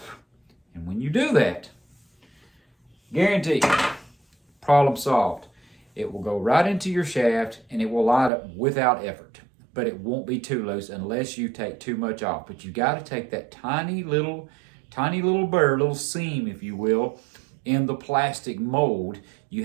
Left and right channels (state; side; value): drops out; left; at 8.3 s